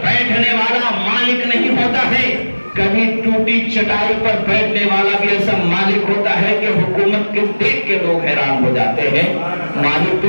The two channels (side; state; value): both; inverted; correlation -1.00